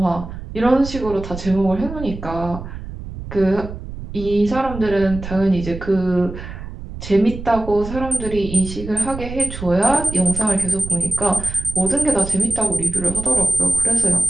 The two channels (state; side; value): noise; right; rumble, 10 dB below the sound